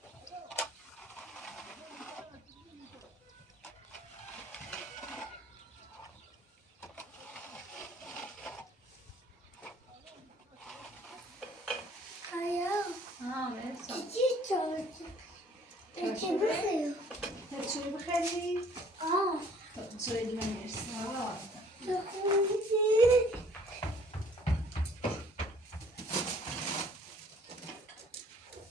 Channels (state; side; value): normal; both; correlation 0.56